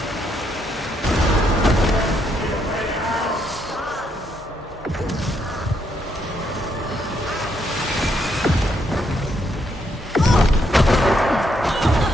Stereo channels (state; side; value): normal; both; correlation 0.75